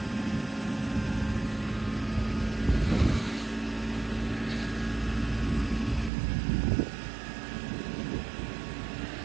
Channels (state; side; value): drops out; left; at 6.1 s